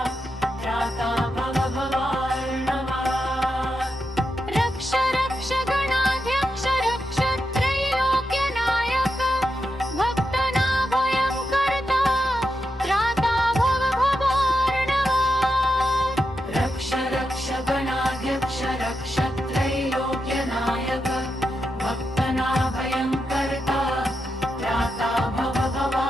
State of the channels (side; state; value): both; normal; correlation 0.87